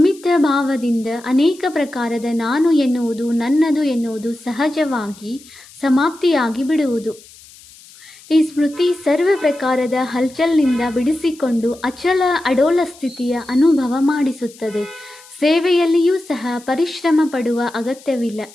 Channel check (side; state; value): left; noise; hiss, 23 dB below the sound